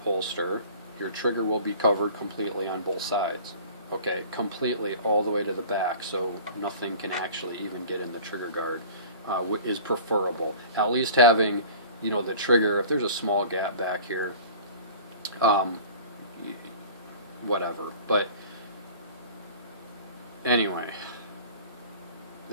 holster, your trigger will be covered completely on both sides. Okay, completely all the way to the back, so nothing can actually even get in the trigger guard, is preferable. At least having, the trigger, if there's a small gap back here, whatever. But anyway,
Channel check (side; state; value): both; inverted; correlation -0.42